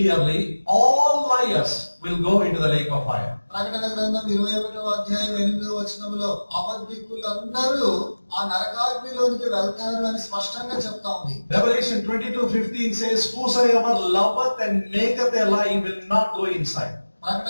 all liars will go into the lake of fire. ప్రకటన గ్రంథం 21వ అధ్యాయం 8వ వచనంలో అబద్ధికులందరూ ఆ నరకాగ్నిలోనికి వెళ్తారు అని స్పష్టంగా చెప్తా ఉంది. Revelation 22:15 says, whosoever loveth and maketh a lie will not go inside.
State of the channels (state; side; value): inverted; both; correlation -1.00